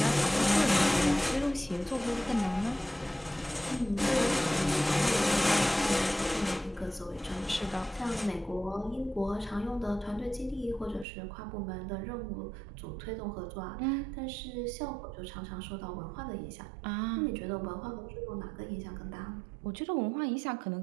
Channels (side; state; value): left; drops out; at 11.1 s